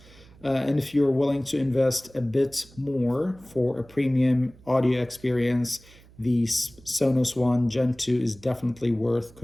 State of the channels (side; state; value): right; noise; hum, 24 dB below the sound